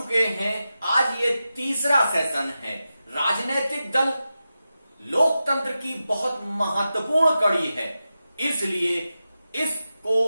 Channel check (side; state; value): both; inverted; correlation -0.92